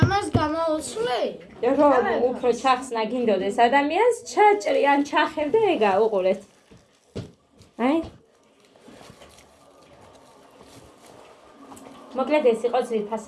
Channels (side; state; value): both; identical; correlation 1.00